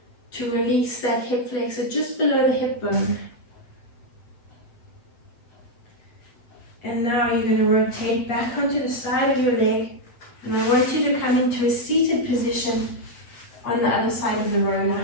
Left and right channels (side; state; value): right; late; 8.3 ms